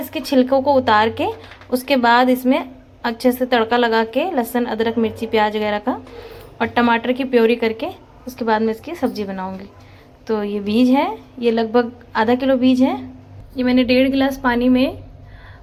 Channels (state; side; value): identical; both; correlation 1.00